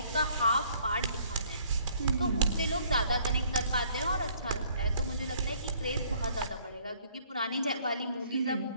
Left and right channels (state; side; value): inverted; both; correlation -0.61